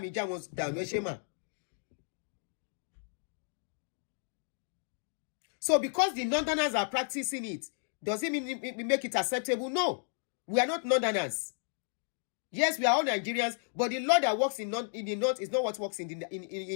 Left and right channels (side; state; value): right; silent; digital silence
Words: já wọn dànù ẹṣẹ mà. So because the Northerners are practicing it, does it mean we make it acceptable? No. We are not Northerners. Yes, we are all Nigerians, but the law that works in the North is not what works in